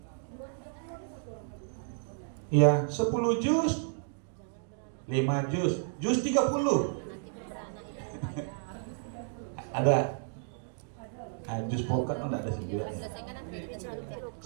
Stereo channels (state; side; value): silent; left; digital silence